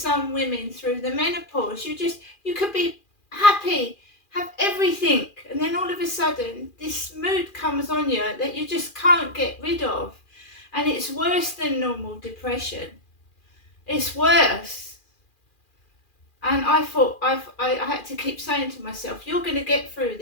women through the menopause. You could be happy, have everything, and then all of a sudden this mood comes on you that you just can't get rid of. And it's worse than normal depression. It's worse. And I thought I had to keep saying to myself, you're going to get through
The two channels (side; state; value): right; late; 2.4 ms